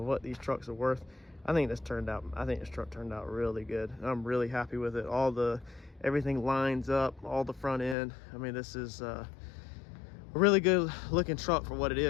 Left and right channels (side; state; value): right; drops out; at 8.0 s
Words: what these trucks are worth. I think this truck turned out really good. I'm really happy with it. Everything lines up, all the front end. I mean, this is a really good looking truck for what it